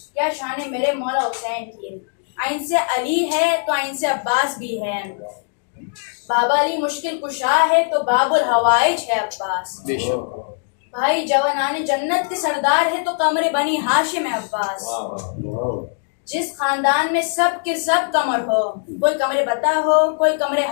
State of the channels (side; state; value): right; silent; 65 dB below the other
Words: کیا شان ہے میرے مولا حسین کی. آئین سے علی ہے تو آئین سے عباس بھی ہے. بابا علی مشکل کشا ہے تو باب الحوائج ہے عباس. بھائی جوانان جنت کے سردار ہے تو قمر بنی ہاشم ہے عباس. جس خاندان میں سب کے سب قمر ہو، کوئی قمر بتا ہو، کوئی قمر